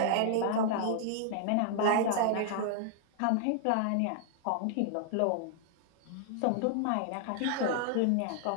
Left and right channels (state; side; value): different; both; correlation -0.01